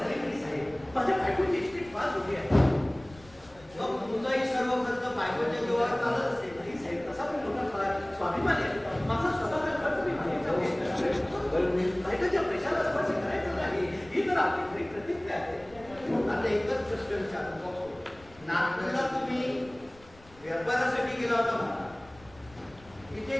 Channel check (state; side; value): noise; left; rumble, 24 dB below the sound